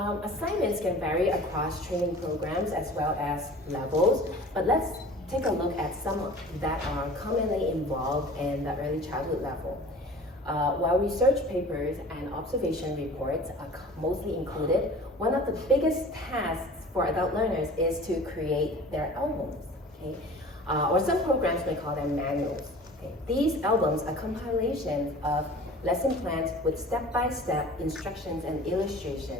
Assignments can vary across training programs as well as levels, but let's take a look at some that are commonly involved in the early childhood level. While research papers and observation reports are mostly included, one of the biggest tasks for adult learners is to create their albums, okay? Or some programs may call them manuals. Okay? These albums are compilations of lesson plans with step-by-step instructions and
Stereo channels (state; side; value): normal; both; correlation 0.42